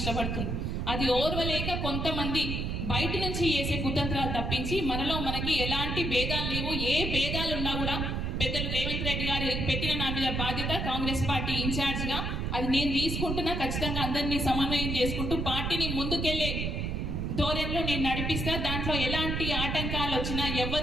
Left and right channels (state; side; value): noise; right; rumble, 1 dB below the sound